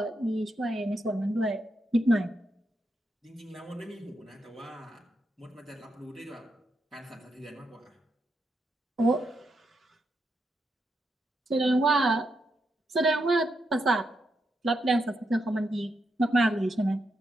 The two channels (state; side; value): normal; both; correlation 0.83